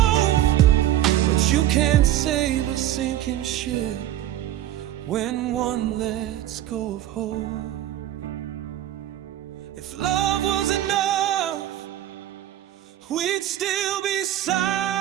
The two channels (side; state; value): left; quieter; 12.8 dB